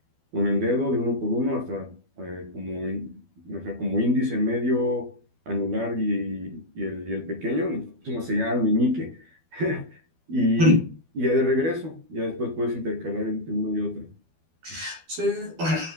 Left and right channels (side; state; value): left; late; 12 ms